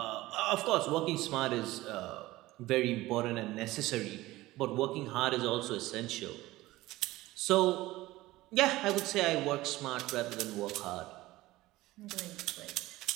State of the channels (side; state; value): left; quieter; 17.9 dB